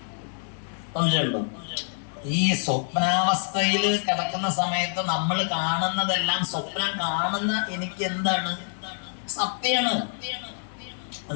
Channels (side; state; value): right; silent; 61 dB below the other